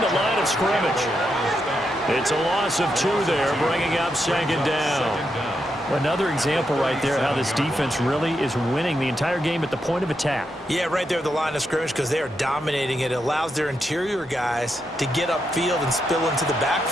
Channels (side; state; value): both; normal; correlation 0.83